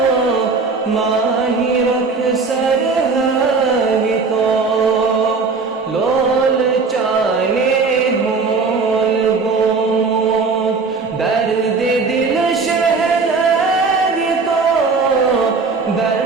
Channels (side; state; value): left; quieter; 4.5 dB